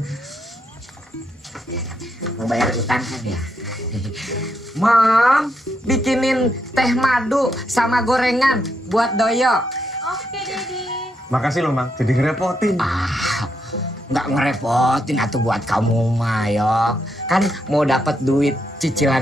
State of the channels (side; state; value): both; normal; correlation 0.79